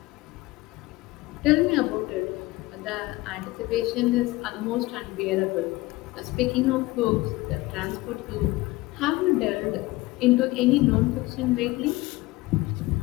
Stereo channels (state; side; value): quieter; right; 20.2 dB